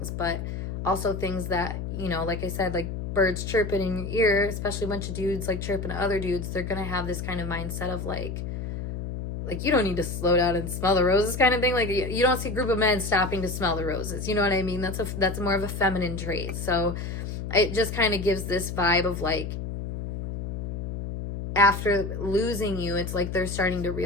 but also things that, you know, like I said, like birds chirping in your ear, especially a bunch of dudes like chirping to other dudes, they're gonna have this kind of mindset of like you don't need to slow down and smell the roses kind of thing. Like, you don't see a group of men stopping to smell the roses, you know what I mean? That's more of a feminine trait. So it just kind of gives this vibe of like, after losing you, it's like they're starting to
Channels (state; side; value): noise; left; hum, 5 dB below the sound